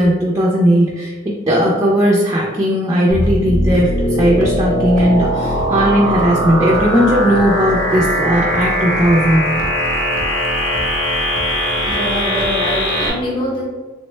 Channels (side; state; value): both; normal; correlation 0.60